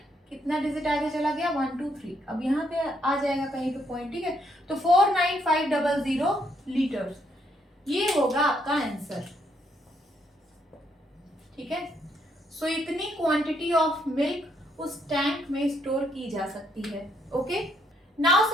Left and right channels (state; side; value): normal; both; correlation 0.73